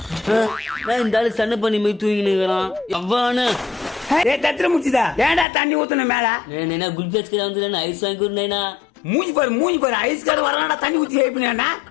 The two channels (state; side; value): drops out; right; at 5.5 s